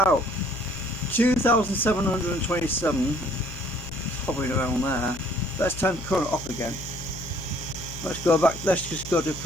out. 2,727, hovering around there. Let's turn current off again. Let's go back. Let's just go to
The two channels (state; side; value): noise; left; hum, 12 dB below the sound